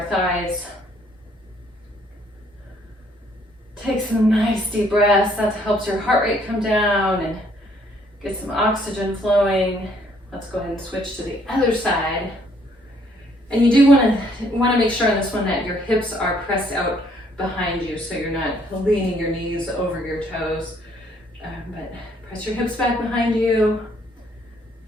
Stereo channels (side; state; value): both; normal; correlation 0.65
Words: thighs. Take some nice deep breaths. That helps your heart rate come down and get some oxygen flowing. Let's go ahead and switch to the other side. And you do want to make sure on this one that your hips are pressed out behind you, so you're not leaning your knees over your toes. But press your hips back behind you.